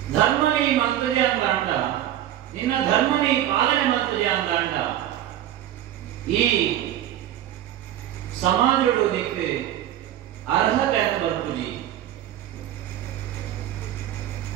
ಧರ್ಮ ನೀ ಮಂತ್ರಜೆ ಅಂತ ಅಂಡ ನಿನ್ನ ಧರ್ಮ ನೀ ಪಾಲನೆ ಮಂತ್ರಜೆ ಅಂತ ಅಂಡ ಈ ಸಮಾಜಗಳು ನಿಕ್ಕೆ ಅರ್ಹತೆ ಅಂತ ಬರ್ತುಜಿ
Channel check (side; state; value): left; quieter; 12.2 dB